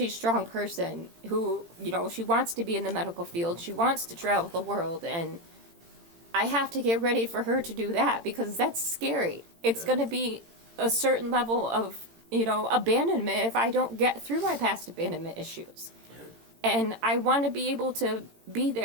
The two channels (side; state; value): left; late; 18 ms